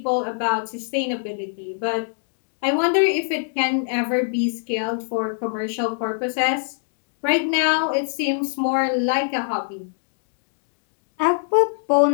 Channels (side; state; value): right; silent; digital silence